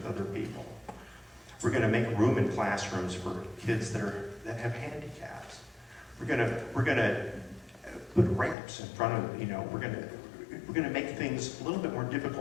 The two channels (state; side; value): drops out; right; at 8.6 s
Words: other people. We're going to make room in classrooms for kids that have handicaps. We're going to put ramps in front of, we're going to make things a little bit more